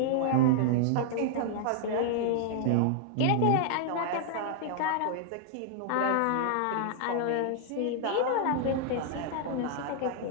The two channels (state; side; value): different; both; correlation -0.01